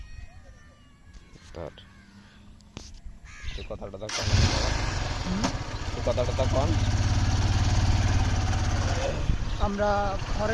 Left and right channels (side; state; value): both; identical; correlation 1.00